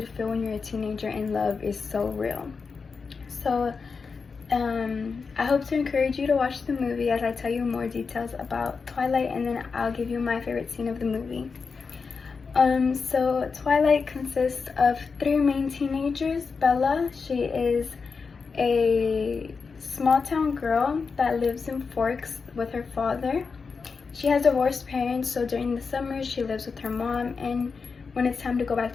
feel when you're a teenager in love is so real. So I hope to encourage you to watch the movie as I tell you more details about Twilight, and then I'll give you my favorite scene of the movie. So Twilight consists of 3 main teenagers. Bella, she is a small town girl that lives in Forks with her father. She has divorced parents, so during the summer she lives with her mom, and when it's time to go back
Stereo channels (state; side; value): quieter; right; 5.0 dB